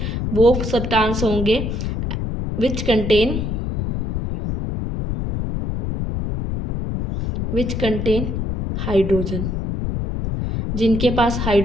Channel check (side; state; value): left; noise; rumble, 2 dB below the sound